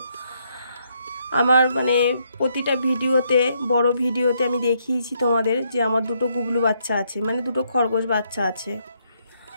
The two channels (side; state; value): both; inverted; correlation -0.74